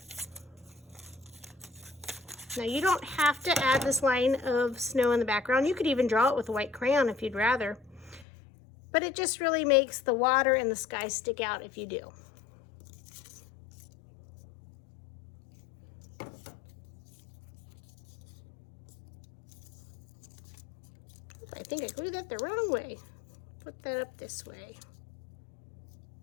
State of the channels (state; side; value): drops out; right; at 8.2 s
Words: Now you don't have to add this line of snow in the background. You could even draw it with a white crayon if you'd rather. But it just really makes the water and the sky stick out if you do. I think I glued that the wrong way. Put that up this way.